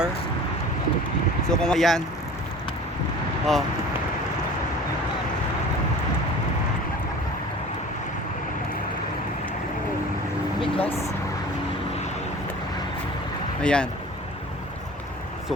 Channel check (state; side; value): normal; both; correlation 0.42